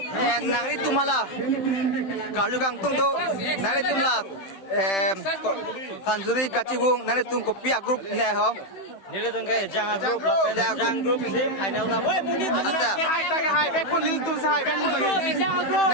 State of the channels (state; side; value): late; right; 15 ms